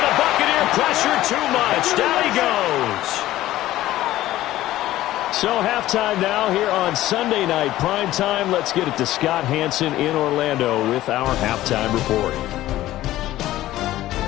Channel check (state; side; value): quieter; right; 15.1 dB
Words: the Buccaneer pressure too much. Down he goes. So halftime now here on Sunday night primetime. Let's get it to Scott Hansen in Orlando with our halftime report.